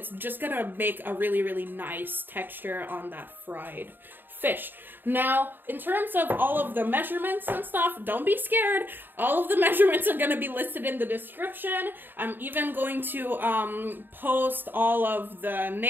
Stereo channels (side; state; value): left; late; 0.094 ms